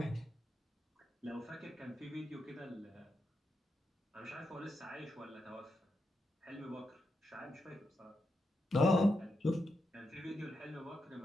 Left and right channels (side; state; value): both; normal; correlation 0.85